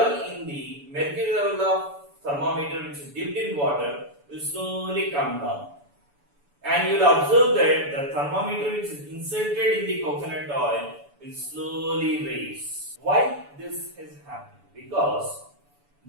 in the mercury level of thermometer, which is dipped in water, will slowly come down. And you will observe that the thermometer which is inserted in the coconut oil will slowly raise. Why this has happened? Because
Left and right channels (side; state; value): left; late; 7.0 ms